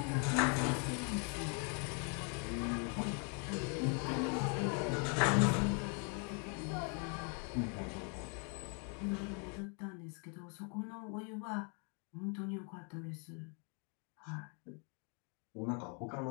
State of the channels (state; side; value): quieter; right; 38.2 dB